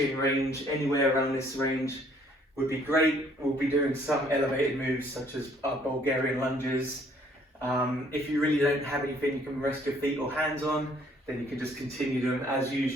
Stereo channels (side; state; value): both; normal; correlation 0.62